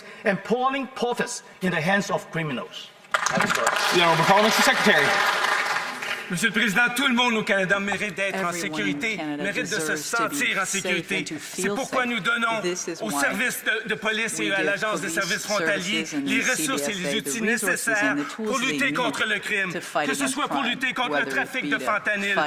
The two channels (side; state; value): both; identical; correlation 1.00